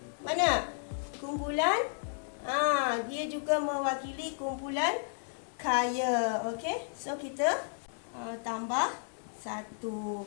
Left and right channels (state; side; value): silent; right; digital silence